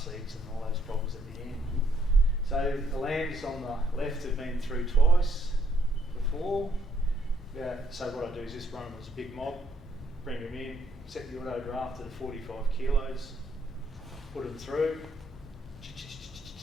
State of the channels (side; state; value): both; normal; correlation 0.70